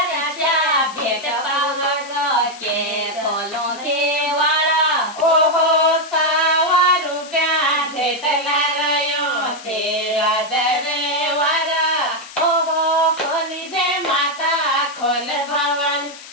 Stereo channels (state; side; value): noise; left; hiss, 16 dB below the sound